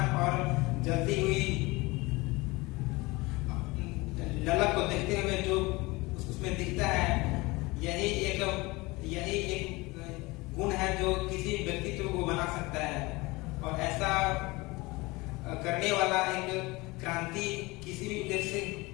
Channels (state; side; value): quieter; right; 23.0 dB